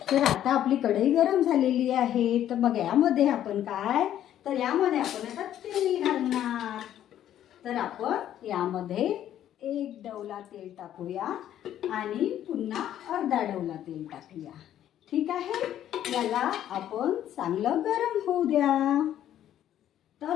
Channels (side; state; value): right; quieter; 11.3 dB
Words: तर आता आपली कढई गरम झालेली आहे। तर मग यामध्ये आपण काय तर यामध्ये आपण आता तेल घालणार। तर आपण यामध्ये एक डवला तेल टाकूया आणि पुन्हा अर्धा डवला तेल टाकूया। ठीक आहे, याला आपण चांगलं गरम होऊ द्या।